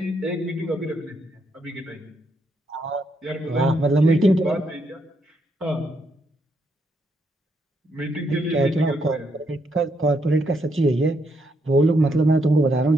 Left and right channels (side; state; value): both; normal; correlation 0.77